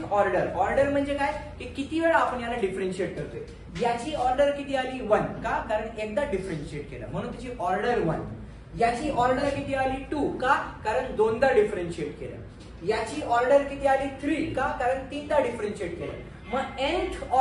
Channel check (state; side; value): identical; both; correlation 1.00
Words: order, order म्हणजे काय? की किती वेळा आपण याला डिफरन्शिएट करतोय. याची ऑर्डर किती आली? 1. का? कारण एकदा डिफरन्शिएट केलं म्हणून त्याची ऑर्डर 1. याची ऑर्डर किती आली? 2. का? कारण दोनदा डिफरन्शिएट केलं. याची ऑर्डर किती आली? 3. का? कारण तीनदा डिफरन्शिएट केलं. मग nth